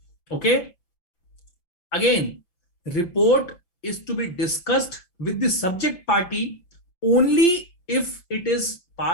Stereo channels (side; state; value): right; late; 5.8 ms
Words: Okay. Again, report is to be discussed with the subject party only if it is